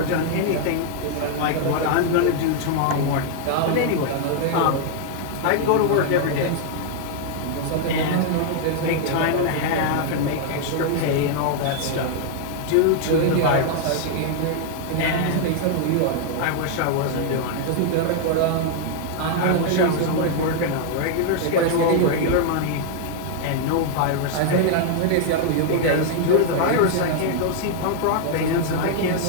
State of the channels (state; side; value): different; both; correlation 0.00